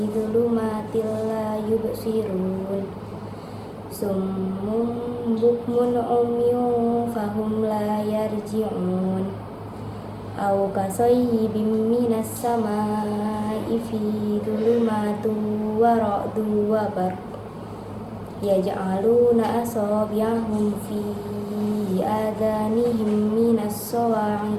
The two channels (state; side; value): identical; both; correlation 1.00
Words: dhulumatil la yubsirun. Summun bukmun umyun fahum la yarji'un. Aw kasayyibin minas samaa'i fi dhulumatin wa ra'dun wa barq yaj'aluna asabi'ahum fi adhanihim minas